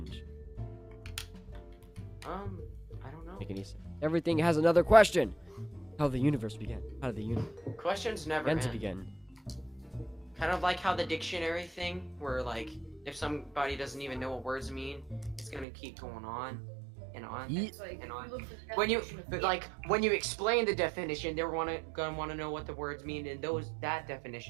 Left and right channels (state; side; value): drops out; left; at 15.7 s